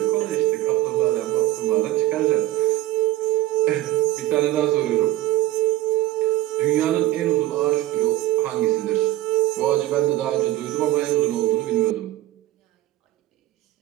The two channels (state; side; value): quieter; left; 15.6 dB